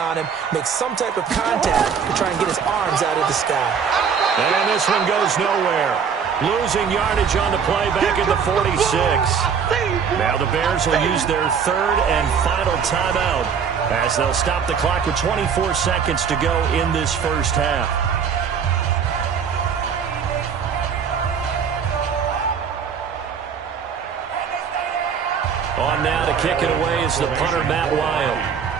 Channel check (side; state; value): left; quieter; 6.8 dB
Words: him, make some type of contact to try and get his arms out of the sky. And this one goes nowhere. Losing yardage on the play back at the 46. Now the Bears will use their 3rd and final timeout as they'll stop the clock with 24 seconds to go in this first half. On now to kick it away is the punter, Matt Wild.